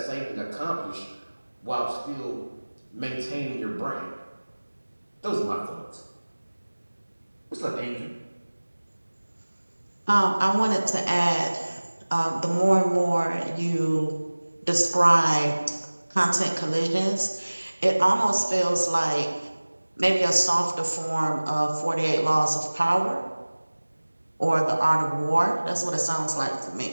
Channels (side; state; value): both; inverted; correlation -1.00